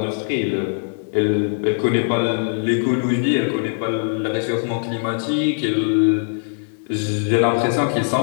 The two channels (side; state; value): right; silent; digital silence